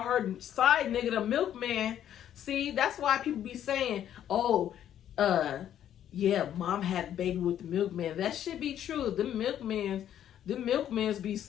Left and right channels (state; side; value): quieter; right; 10.6 dB